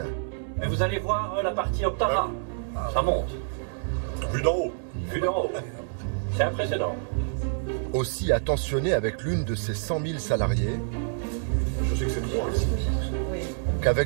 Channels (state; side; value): silent; left; digital silence